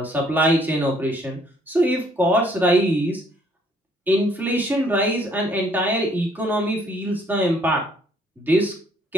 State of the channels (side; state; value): both; normal; correlation 0.63